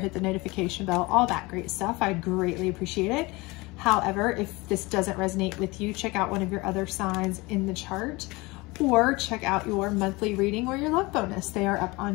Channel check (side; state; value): right; quieter; 23.5 dB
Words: the notification bell, all that great stuff. I'd greatly appreciate it. However, if this doesn't resonate with you, check out one of your other signs in the chart, or check out your monthly reading or your love bonus. They are up